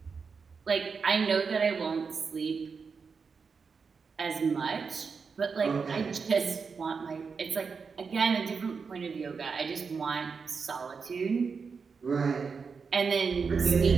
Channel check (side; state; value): left; quieter; 5.4 dB